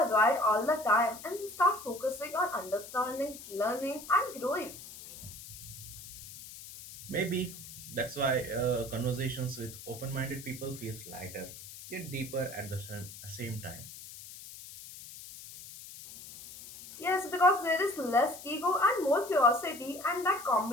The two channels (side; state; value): left; noise; hiss, 14 dB below the sound